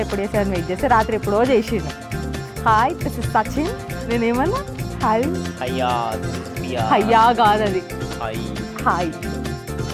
అని వెయిట్ చేస్తే రాత్రి ఎప్పుడో చేసిండు. Hi this is Sachin. నేనేమన్నా హాయ్ హయ్యా కాదు అది హాయ్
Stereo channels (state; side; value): identical; both; correlation 1.00